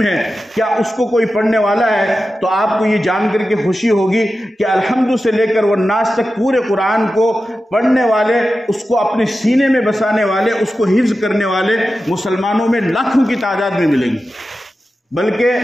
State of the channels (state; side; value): normal; both; correlation 0.93